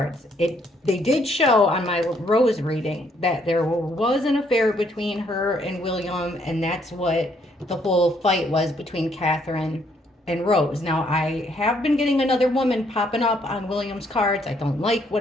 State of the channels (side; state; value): both; normal; correlation 0.69